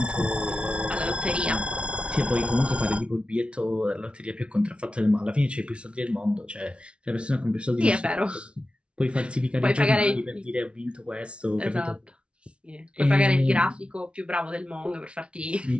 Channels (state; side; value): late; left; 0.059 ms